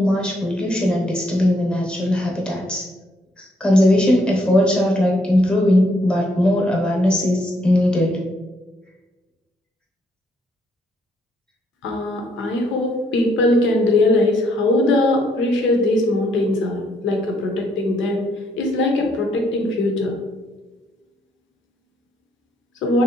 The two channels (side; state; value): both; normal; correlation 0.71